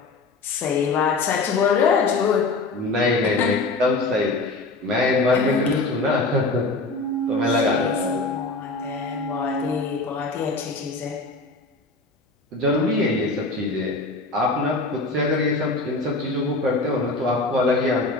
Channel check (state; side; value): quieter; right; 3.3 dB